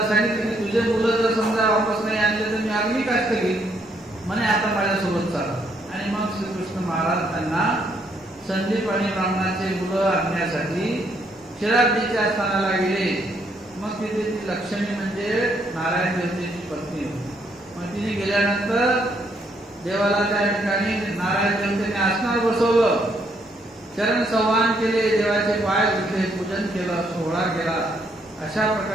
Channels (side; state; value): both; normal; correlation 0.72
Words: सांगितलं की तुझे मुलं जर समजा वापस नाही आणले तर मी अग्निकाष्ठ घेईन म्हणे, आता माझ्यासोबत चाल. आणि मग श्रीकृष्ण महाराज त्यांना संदीप आणि ब्राह्मणाचे मुलं आणण्यासाठी क्षीराब्दीच्या स्थानाला गेले. मग तिथे ती लक्ष्मी म्हणजे नारायण देवतेची पत्नी होती. मग तिने गेल्यानंतर देवाला त्या ठिकाणी नारायण देवतेने आसनावर बसवलं, चरण संवाहन केले, देवाचे पाय धुतले, पूजन केलं, सोहळा केला. अशा